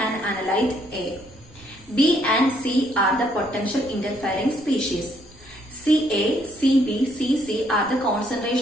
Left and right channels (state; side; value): normal; both; correlation 0.69